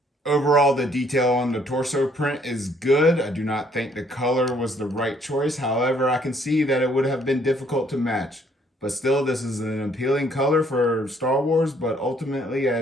Overall, the detail on the torso print is good. I do not think the color was the right choice. However, I can see that it would have been difficult to match. But still, this is an appealing color for Star Wars. But ultimately,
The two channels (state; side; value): normal; both; correlation 0.65